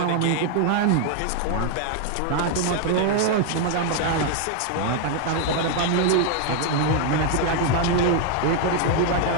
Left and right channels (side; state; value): both; different; correlation 0.00